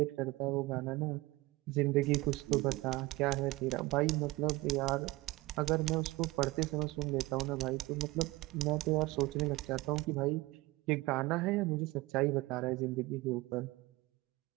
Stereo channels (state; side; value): quieter; left; 20.6 dB